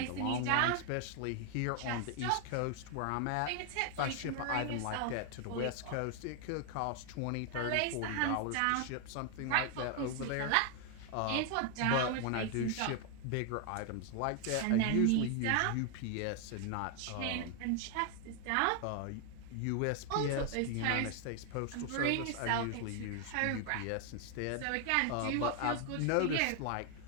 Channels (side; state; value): both; different; correlation 0.00